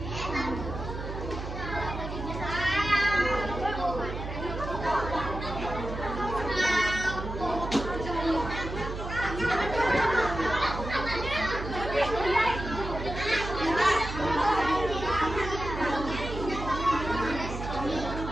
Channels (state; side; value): noise; right; hum, 7 dB below the sound